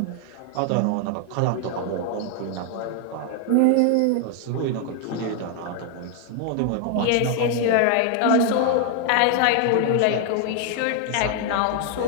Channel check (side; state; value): both; different; correlation 0.00